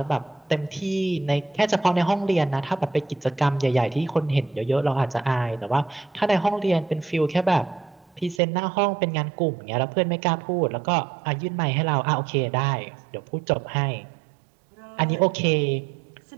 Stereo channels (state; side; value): drops out; left; at 8.4 s